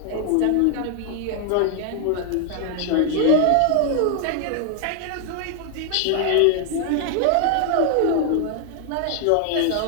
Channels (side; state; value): both; different; correlation 0.00